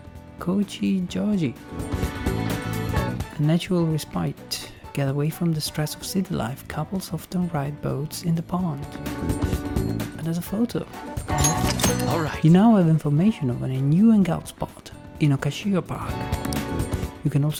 Kochijoji. A natural respite. Get away from the stress of city life. Couples often ride boats in the pond. And there's a photo. All right. You now have information of a new hangout spot in Okashio Park. You can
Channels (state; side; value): identical; both; correlation 1.00